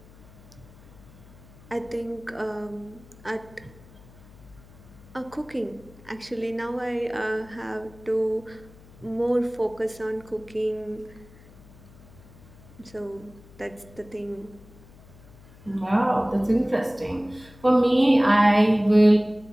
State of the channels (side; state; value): left; noise; hum, 23 dB below the sound